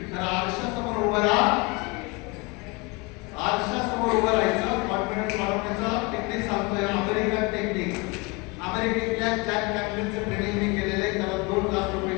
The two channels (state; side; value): quieter; right; 27.0 dB